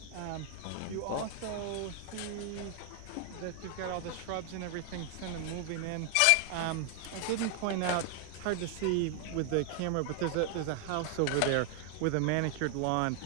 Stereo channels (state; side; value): different; both; correlation 0.00